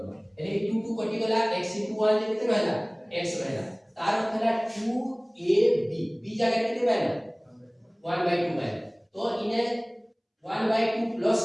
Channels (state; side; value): identical; both; correlation 1.00